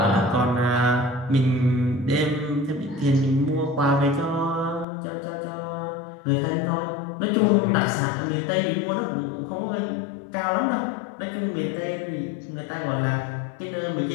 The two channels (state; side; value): drops out; right; at 4.9 s